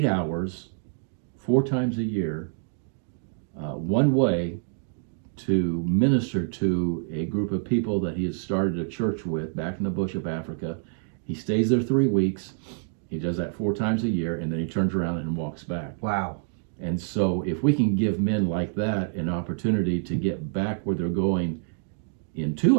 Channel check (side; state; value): left; silent; 60 dB below the other